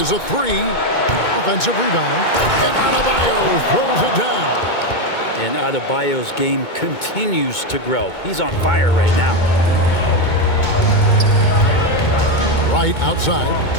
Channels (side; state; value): right; late; 2.2 ms